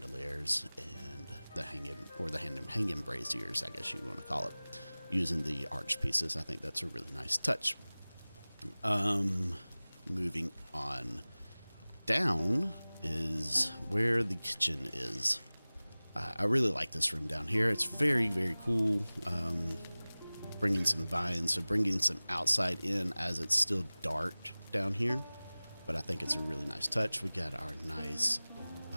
and the hanging braziers, I guess you want to call it, using the arch pieces. I think that's a really nice touch. Moving on down is where the kitchen is. I really like this room down here. It's very, very cool. Bringing some vines, so bringing some outside in as it's still dark down here. But I think it's a really nice touch. We got our nice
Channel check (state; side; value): inverted; both; correlation -0.99